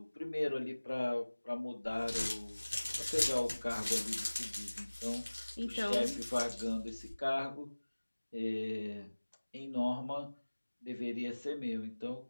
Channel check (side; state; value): both; inverted; correlation -1.00